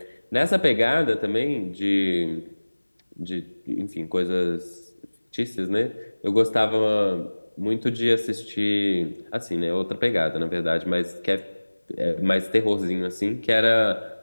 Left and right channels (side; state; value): both; inverted; correlation -1.00